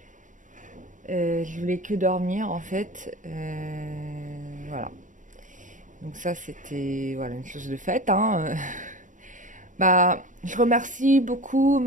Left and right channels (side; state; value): left; late; 0.37 ms